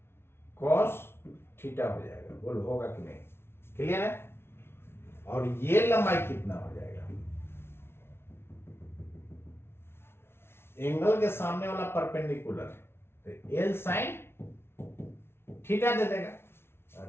cos थीटा हो जाएगा। बोलो होगा कि नहीं? क्लियर है? और ये लंबाई कितना हो जाएगा, एंगल के सामने वाला परपेंडिकुलर, तो L sin थीटा दे देगा।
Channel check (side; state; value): right; late; 0.12 ms